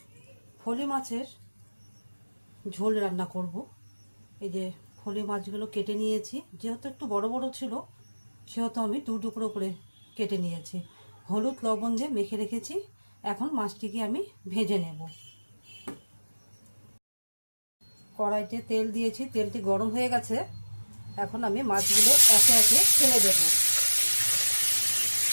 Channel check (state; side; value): inverted; both; correlation -1.00